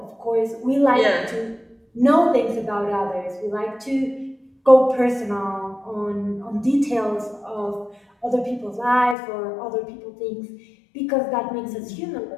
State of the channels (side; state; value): right; drops out; at 9.2 s